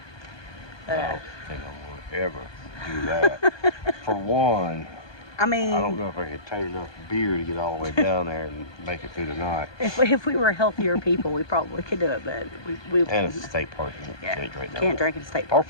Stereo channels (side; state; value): right; late; 1.2 ms